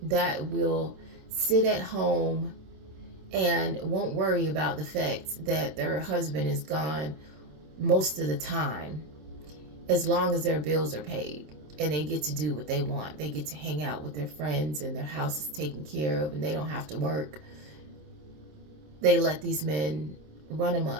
that will sit at home and won't worry about the fact that their husband is gone most of the time, as long as their bills are paid and they get to do what they want. They get to hang out with their friends and their house is taken care of and they don't have to work. They let these men run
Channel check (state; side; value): late; left; 27 ms